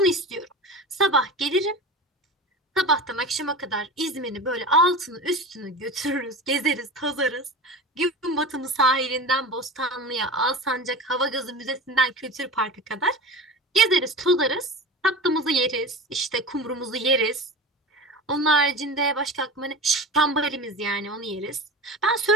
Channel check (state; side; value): normal; both; correlation 0.31